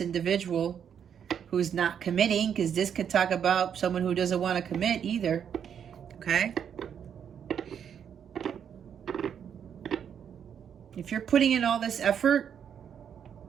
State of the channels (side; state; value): left; quieter; 8.2 dB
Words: individual who's not committing, because this could talk about someone who doesn't want to commit either. Okay? If you're putting in all this effort